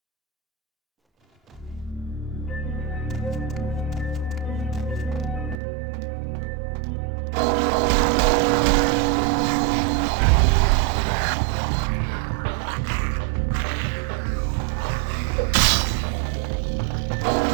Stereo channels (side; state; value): left; drops out; at 5.6 s